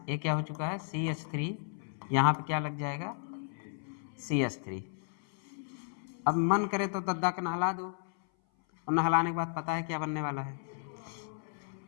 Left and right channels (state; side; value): silent; right; 55 dB below the other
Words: ये क्या हो चुका है? CH3, यहाँ पे क्या लग जाएगा? CH3। अब मन करे तो दद्दा का नहला दो, और नहलाने के बाद पता है क्या बनने वाला है?